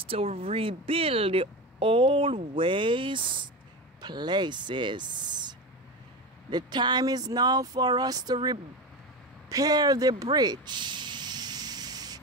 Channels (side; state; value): both; normal; correlation 0.22